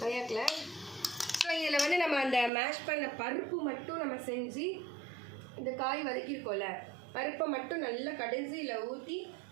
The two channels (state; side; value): drops out; left; at 2.5 s